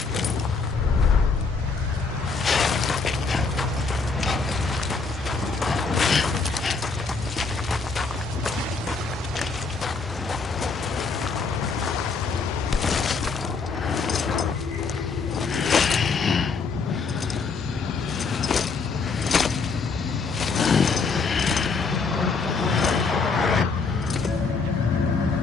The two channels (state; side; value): quieter; right; 4.6 dB